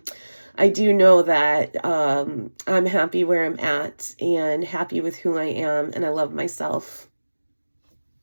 I do know that I'm happy where I'm at and happy with who I am, and I love myself.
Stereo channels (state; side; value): inverted; both; correlation -1.00